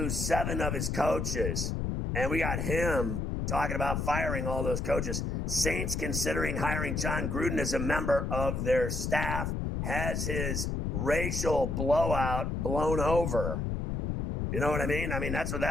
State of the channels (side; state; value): left; noise; rumble, 1 dB below the sound